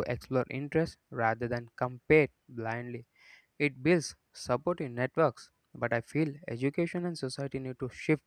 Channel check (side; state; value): both; identical; correlation 1.00